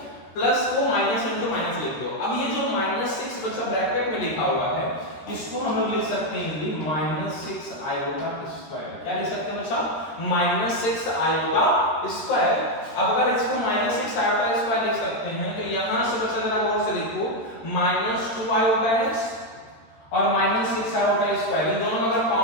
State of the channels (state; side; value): late; right; 13 ms